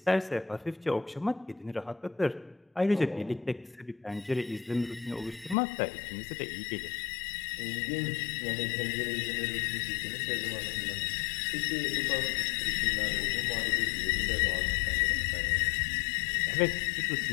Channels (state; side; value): drops out; right; at 5.6 s